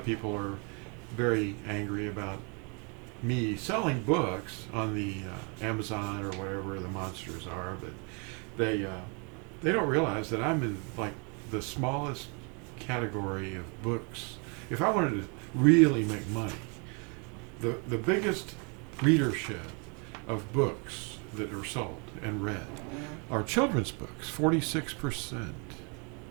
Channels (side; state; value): left; quieter; 34.6 dB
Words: people are very angry about me selling books on the Amazon or whatever the monsters are, but they don't realize that I'm in like the smallest category of books. If I wanted to really make money, the biggest readership of books that are sold and read are children's books, 46%.